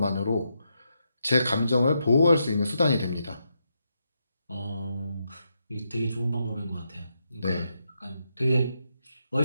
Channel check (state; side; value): inverted; both; correlation -0.82